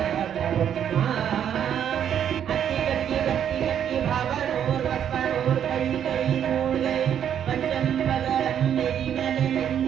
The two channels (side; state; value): left; quieter; 9.2 dB